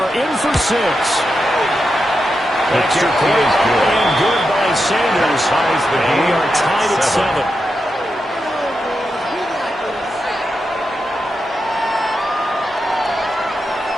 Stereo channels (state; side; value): normal; both; correlation 0.87